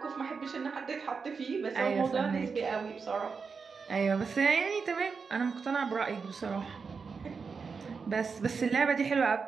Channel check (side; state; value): left; quieter; 5.3 dB